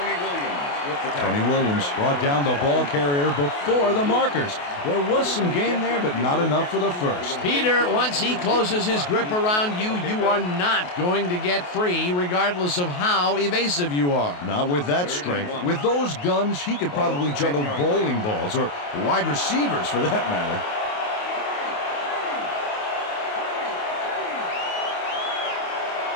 Tony Williams brought down the ball carrier before the markers. There was some gain there, but not enough for the first. Peter, once he closes his grip around you, you are not going to get free, regardless of how evasive you are. Not with that strength. With those guns, he could probably juggle bowling balls or wide receivers for that matter.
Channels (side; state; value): right; late; 28 ms